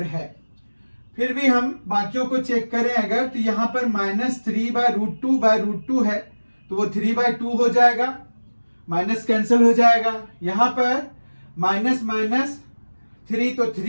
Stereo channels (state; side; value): inverted; both; correlation -1.00